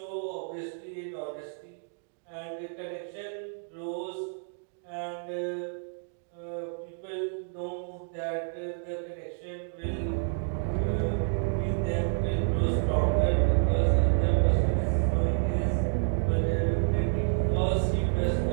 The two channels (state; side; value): silent; left; digital silence